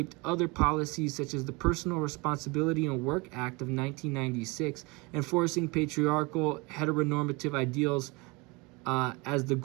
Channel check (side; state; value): left; quieter; 26.6 dB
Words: other policies such as the Personal Responsibility and Work Act of 1996, enforcing patriarchal heteronormative ideals as the